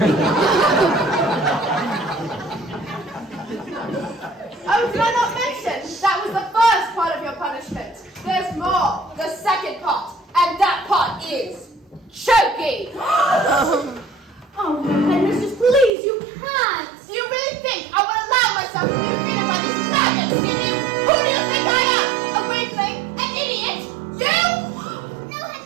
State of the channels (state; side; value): drops out; left; at 15.9 s